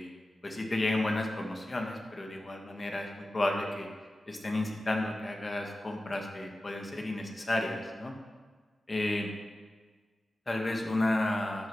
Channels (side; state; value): both; normal; correlation 0.94